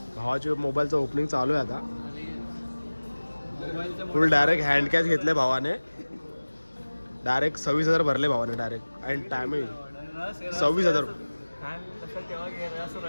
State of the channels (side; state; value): both; inverted; correlation -1.00